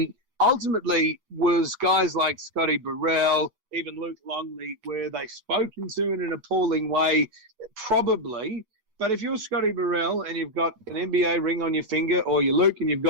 ultimately was guys like Scottie Burrell, even Luc Longley, were they spoken to in an appalling way? Probably. But if you're Scottie Burrell and you've got an NBA ring on your finger, or you're Luke and you've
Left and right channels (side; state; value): left; late; 9.2 ms